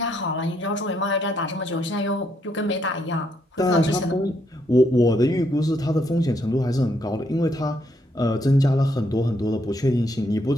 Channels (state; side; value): normal; both; correlation 0.74